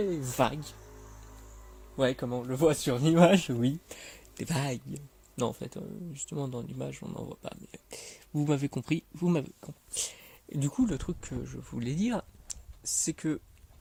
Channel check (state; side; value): identical; both; correlation 1.00